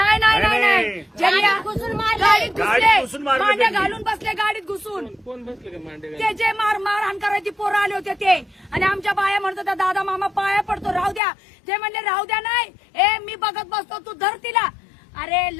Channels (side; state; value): right; drops out; at 11.2 s